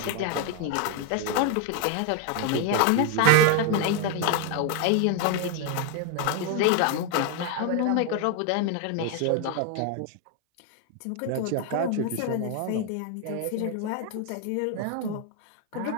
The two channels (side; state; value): both; different; correlation 0.01